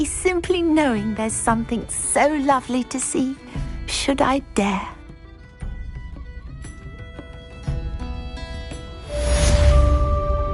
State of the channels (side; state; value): both; identical; correlation 1.00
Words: simply knowing there's something so lovely to see, should I dare.